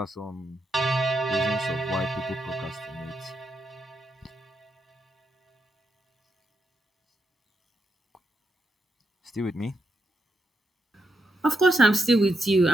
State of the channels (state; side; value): normal; both; correlation 0.83